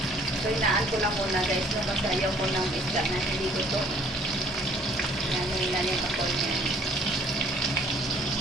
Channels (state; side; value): normal; both; correlation 0.58